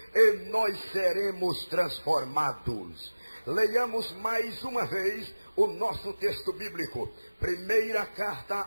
e nós seremos transformados. Leiamos mais uma vez o nosso texto bíblico. Primeira carta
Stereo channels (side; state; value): both; inverted; correlation -1.00